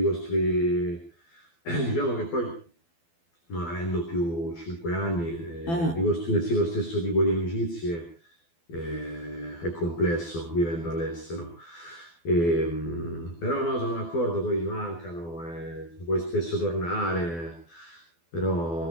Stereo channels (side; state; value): right; late; 12 ms